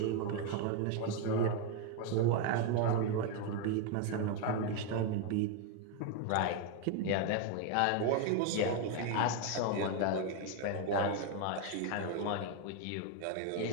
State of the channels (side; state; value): both; different; correlation 0.01